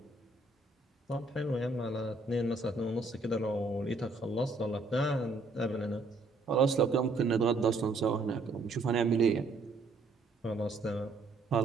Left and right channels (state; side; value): quieter; left; 3.3 dB